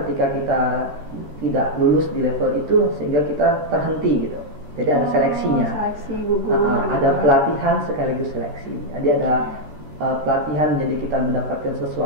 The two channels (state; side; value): late; left; 13 ms